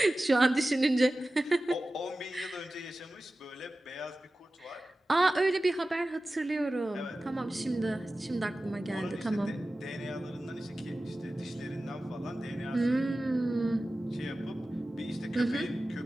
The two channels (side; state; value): both; normal; correlation 0.96